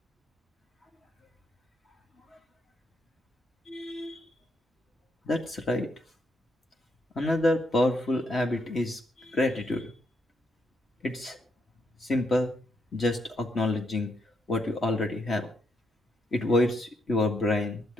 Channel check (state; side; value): normal; both; correlation 0.78